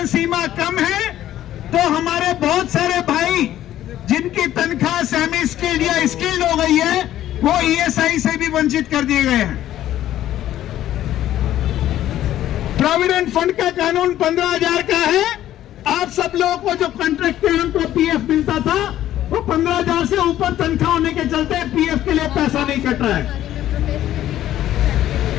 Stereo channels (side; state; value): right; quieter; 12.7 dB